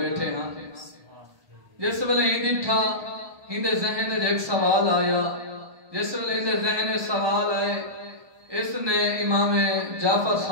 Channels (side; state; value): left; late; 1.2 ms